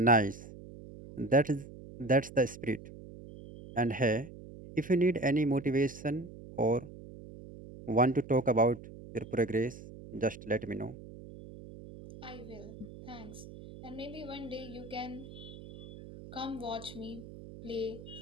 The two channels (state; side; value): noise; right; hum, 15 dB below the sound